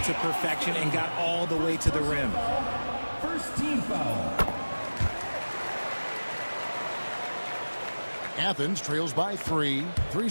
to perfection and got all the way to the rim. First team foul. Athens trails by 3.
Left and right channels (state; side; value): inverted; both; correlation -1.00